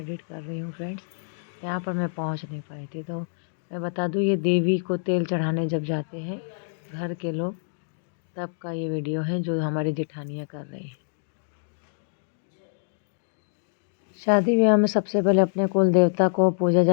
कर रही हूँ फ्रेंड्स। यहाँ पर मैं पहुँच नहीं पाई थी। तो मैं बता दूँ, ये देवी को तेल चढ़ाने जब जाते हैं घर के लोग, तब का ये वीडियो है जो हमारी जेठानियाँ कर रही हैं। शादी ब्याह में सबसे पहले अपने कुल देवता को पूजा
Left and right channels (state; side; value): silent; right; digital silence